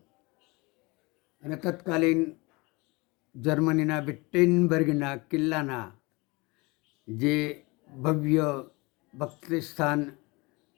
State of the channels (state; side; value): quieter; right; 25.6 dB